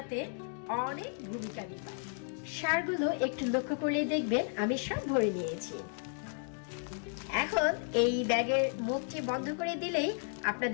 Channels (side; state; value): right; silent; 55 dB below the other